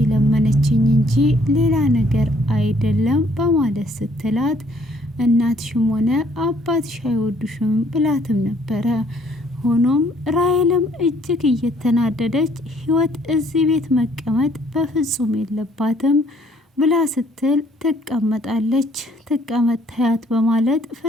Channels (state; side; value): normal; both; correlation 0.63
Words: እንጂ ሌላ ነገር አይደለም በማለት ስትላት፣ እናትሽም ሆነ አባትሽ አይወዱሽም ብላትም ነበረ። ሆኖም ራሔልም እጅግ እየተናደደች ህይወት እዚህ ቤት መቀመጥ በፍጹም የለባትም ብላ ስትል ትቀመጣለች። ትቀመጥ ታያት በማለት